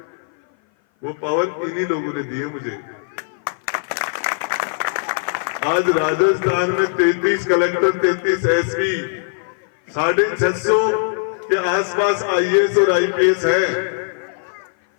वो पावर इन्हीं लोगों ने दी है मुझे। आज राजस्थान में 33 कलेक्टर, 33 एसपी, 650 के आसपास आईएएस और आईपीएस है।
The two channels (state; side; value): silent; right; 57 dB below the other